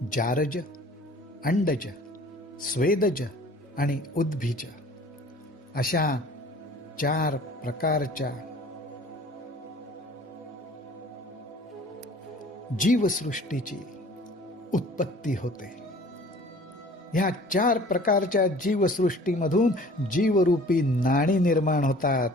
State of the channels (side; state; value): both; normal; correlation 0.49